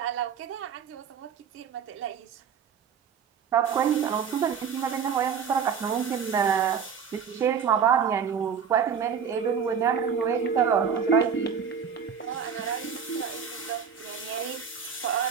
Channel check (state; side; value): quieter; left; 7.0 dB